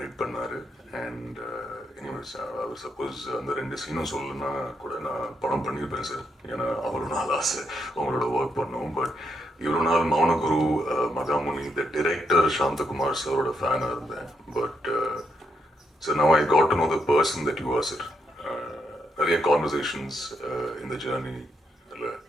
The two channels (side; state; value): both; normal; correlation 0.79